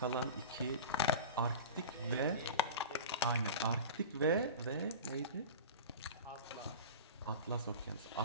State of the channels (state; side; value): inverted; both; correlation -0.32